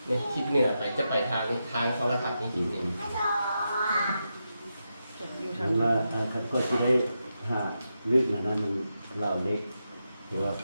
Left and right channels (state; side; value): inverted; both; correlation -0.87